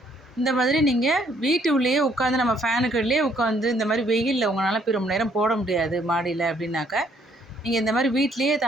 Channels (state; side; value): normal; both; correlation 0.66